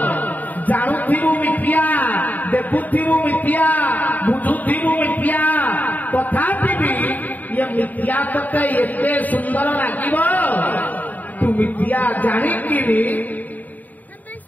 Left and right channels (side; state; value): right; late; 0.081 ms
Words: जानुथिबु मिथ्या देखुथिबु मिथ्या बुझुथिबु मिथ्या तथापि भी ये मिथ्या तते एते सुंदर लागिब तू मिथ्या जानिकी भी